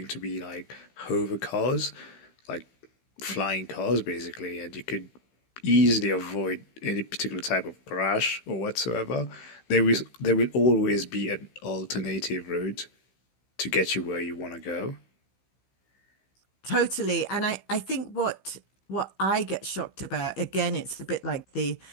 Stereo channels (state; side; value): late; right; 15 ms